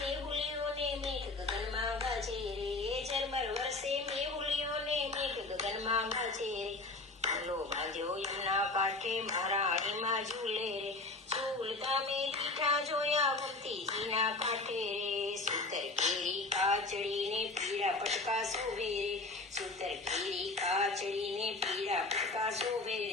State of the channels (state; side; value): quieter; right; 3.3 dB